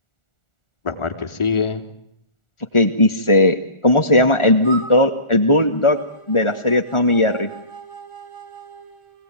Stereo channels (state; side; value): late; right; 1.4 ms